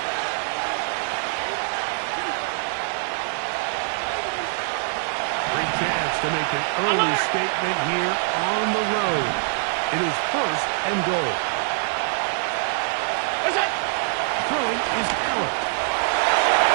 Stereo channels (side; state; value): left; silent; 63 dB below the other